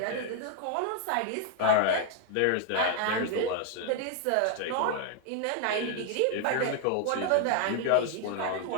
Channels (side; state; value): both; different; correlation 0.00